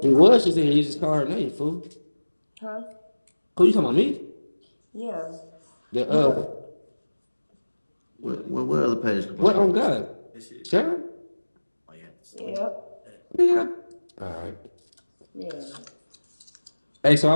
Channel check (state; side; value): inverted; both; correlation -1.00